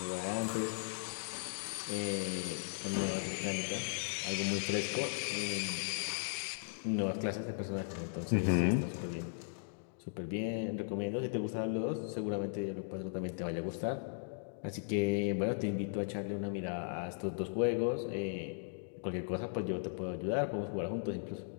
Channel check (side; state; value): right; silent; digital silence